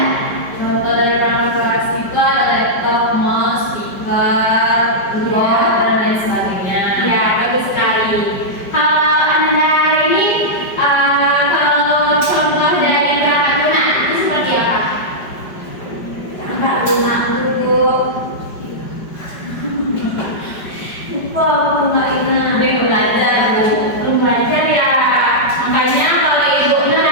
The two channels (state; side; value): late; right; 5.1 ms